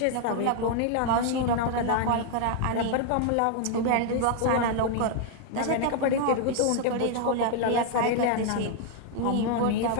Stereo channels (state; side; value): different; both; correlation 0.00